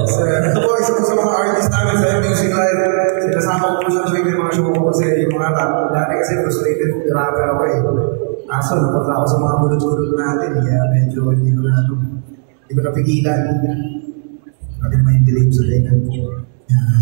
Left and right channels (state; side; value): silent; left; 70 dB below the other